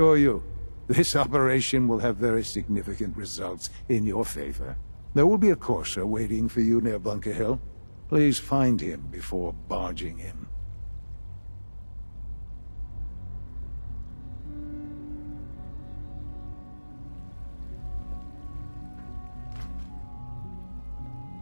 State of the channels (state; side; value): inverted; both; correlation -1.00